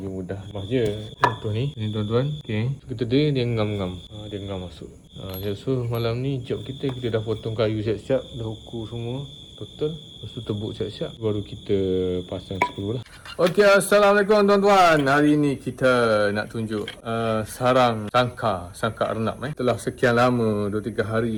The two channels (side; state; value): both; identical; correlation 1.00